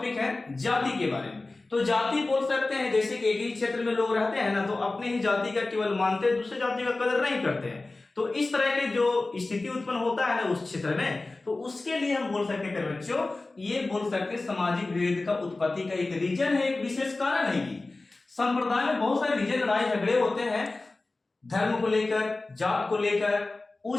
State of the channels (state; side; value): quieter; right; 3.2 dB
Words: है जाति के बारे में। तो जाति बोल सकते हैं जैसे कि एक ही क्षेत्र में लोग रहते हैं ना, तो अपने ही जाति का केवल मानते हैं, दूसरे जाति का कदर नहीं करते हैं, तो इस तरह के जो स्थिति उत्पन्न होता है ना उस क्षेत्र में, तो उसके लिए हम बोल सकते हैं बच्चों, ये बोल सकते हैं सामाजिक विभेद का उत्पत्ति का एक रीजन है, एक विशेष कारण है। संप्रदाय में बहुत सारे रीजन, लड़ाई झगड़े होते हैं, धर्म को लेकर, जात को लेकर,